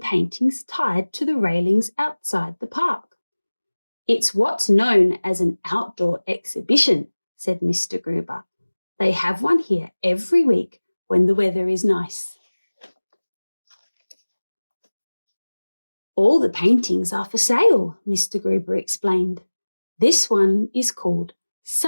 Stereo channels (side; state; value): both; inverted; correlation -1.00